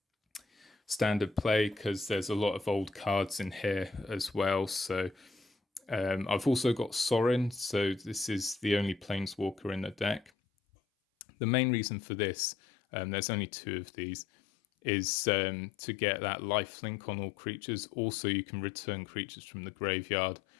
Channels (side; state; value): right; drops out; at 10.3 s